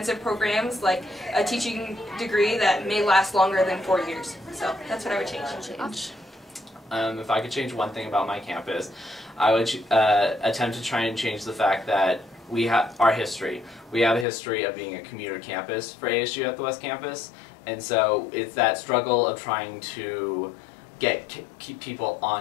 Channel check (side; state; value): right; drops out; at 14.2 s